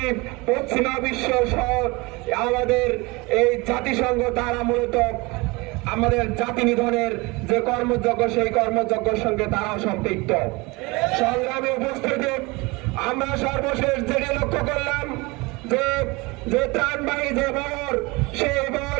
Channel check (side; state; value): left; quieter; 25.0 dB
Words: পশ্চিমা বিশ্ব সহ আমাদের এই জাতিসংঘ তারা মূলত আমাদের জাতি নিধনের যে কর্মযজ্ঞ সেই কর্মযজ্ঞের সঙ্গে তারাও সম্পৃক্ত। সংগ্রামী উপস্থিতি আমরা সর্বশেষ যেটি লক্ষ্য করলাম যে ত্রাণবাহী যে বহর, সেই